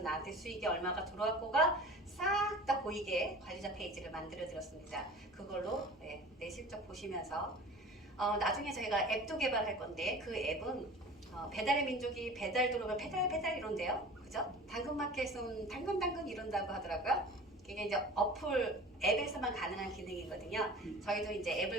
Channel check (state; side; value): normal; both; correlation 0.40